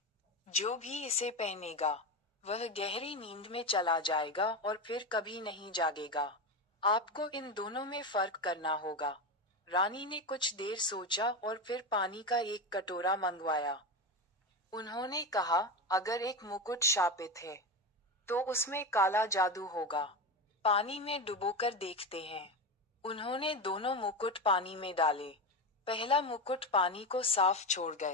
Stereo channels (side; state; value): both; normal; correlation 0.18